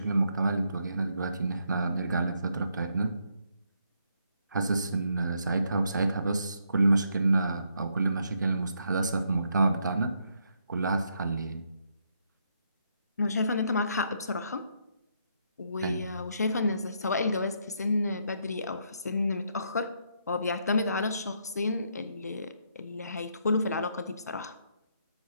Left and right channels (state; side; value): inverted; both; correlation -0.75